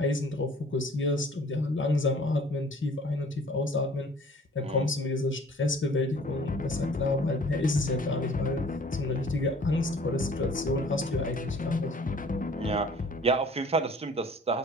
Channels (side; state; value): both; normal; correlation 0.51